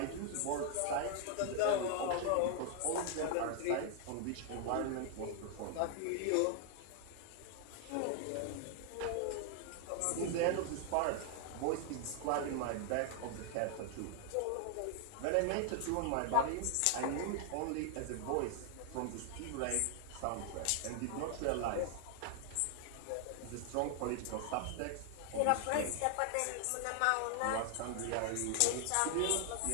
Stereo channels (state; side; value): different; both; correlation 0.00